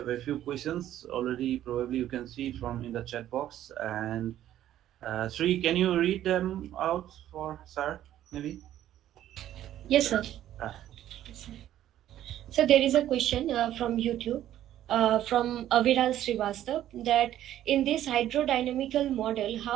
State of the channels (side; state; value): left; quieter; 12.3 dB